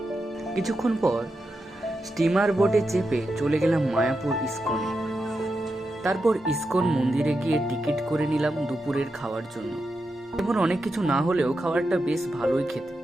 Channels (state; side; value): normal; both; correlation 0.88